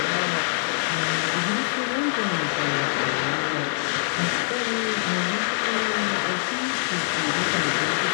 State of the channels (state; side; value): silent; right; digital silence